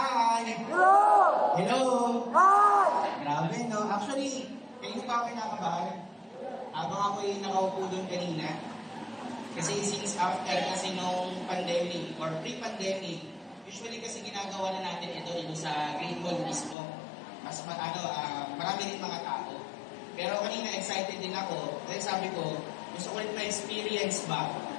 Hello! Hello! Hi! Grabe, no? Actually, kayo pa ako kinakabahan. Habang ako'y nakaupo doon kanina. Kasi since after kasi nung pandemic or pre-pandemic, usually kasi ginagawa na natin ito sa Great Mall mismo. Mas marami din mga tao. Pero kanina excited din ako. Dahil sabi ko, gusto ko ulit ma-experience ba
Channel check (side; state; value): right; drops out; at 16.8 s